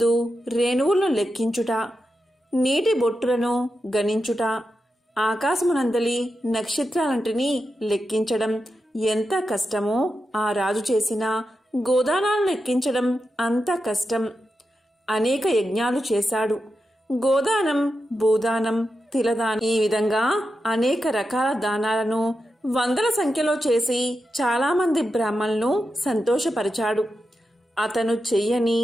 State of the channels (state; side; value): normal; both; correlation 0.89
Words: రేణువులను లెక్కించుట, నీటి బొట్టులను గణించుట, ఆకాశమునందలి నక్షత్రాలంటిని లెక్కించడం ఎంత కష్టమో ఆ రాజు చేసిన గోదానాలను లెక్కించడం అంత కష్టం. అనేక యజ్ఞాలు చేశాడు. గోదానం, భూదానం, తిలదానం, ఈ విధంగా అనేక రకాల దానాలను వందల సంఖ్యలో చేసి చాలామంది బ్రాహ్మణులను సంతోషపరిచాడు. అతను చెయ్యని